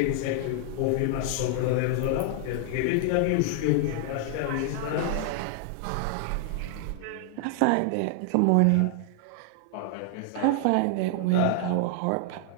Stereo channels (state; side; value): different; both; correlation 0.00